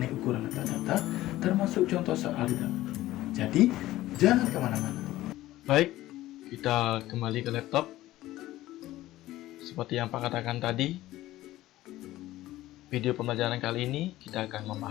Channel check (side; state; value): right; quieter; 15.8 dB